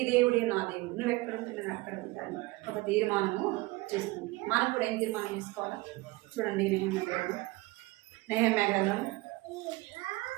దేవుడే నా దేవుడు, నువ్వు ఎక్కడ ఉంటే నేను అక్కడ ఉంటాను ఒక తీర్మానము చేస్తుంది. మనం కూడా ఏం తీర్మానం చేసుకోవాలా చూడండి. నెహెమ్యా గ్రంథం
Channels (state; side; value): quieter; left; 21.4 dB